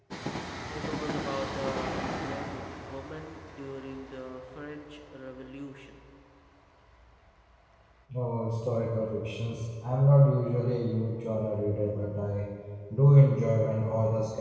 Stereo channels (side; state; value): both; identical; correlation 1.00